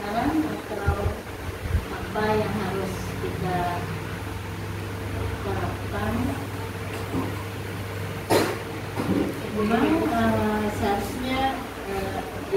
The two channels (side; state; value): both; identical; correlation 1.00